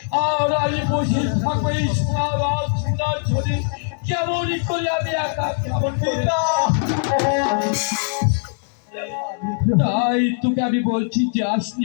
আর আমি বসে থাকবো এই সোনার ছবি কেমন করে আমি একা কেমন পিতা, তাই তোকে আমি বলছি,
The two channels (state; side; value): silent; right; digital silence